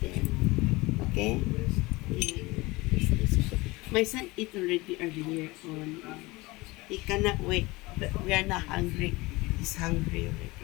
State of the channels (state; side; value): quieter; right; 22.2 dB